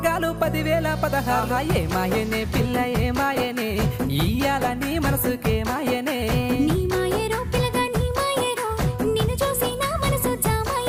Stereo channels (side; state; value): both; identical; correlation 1.00